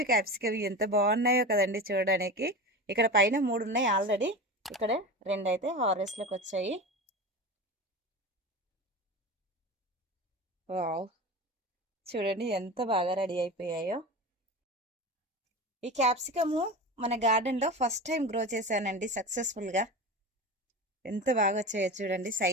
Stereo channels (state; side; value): normal; both; correlation 0.28